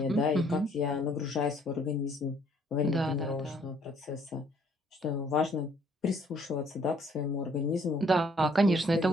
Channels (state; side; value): normal; both; correlation 0.63